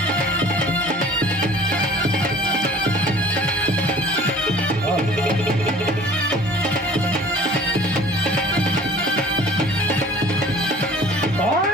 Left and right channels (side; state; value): both; normal; correlation 0.48